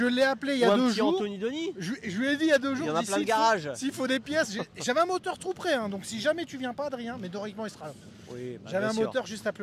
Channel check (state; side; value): identical; both; correlation 1.00